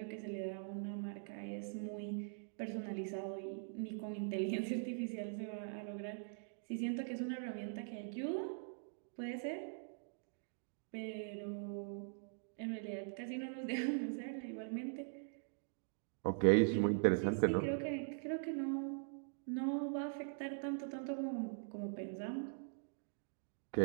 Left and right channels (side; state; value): left; silent; digital silence